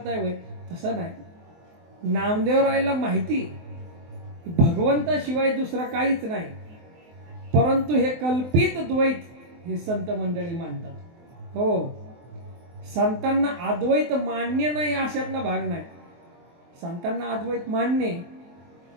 होय, तसं नाही. नामदेवरायला माहिती भगवंताशिवाय दुसरं काहीच नाही, परंतु हे कल्पित द्वैत हे संत मंडळी मानतात. हो संतांना अद्वैत मान्य नाही अशातला भाग नाही. संतांना अद्वैत मान्य,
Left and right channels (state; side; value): late; left; 24 ms